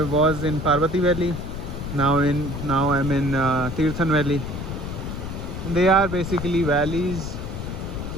was in Parvati Valley. Now I'm in Tirthan Valley. They are basically valleys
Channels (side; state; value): left; noise; rumble, 6 dB below the sound